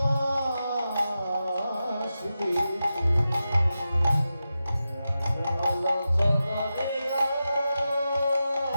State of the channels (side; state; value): both; inverted; correlation -0.92